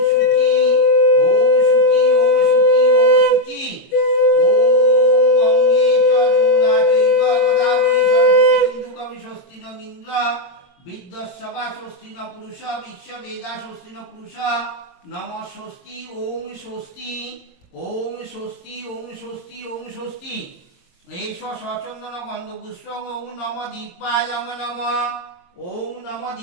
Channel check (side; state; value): right; late; 22 ms